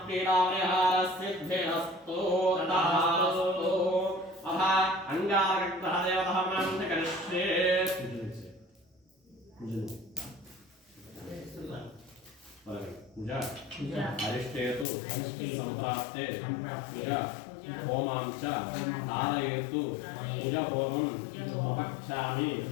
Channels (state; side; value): drops out; right; at 14.9 s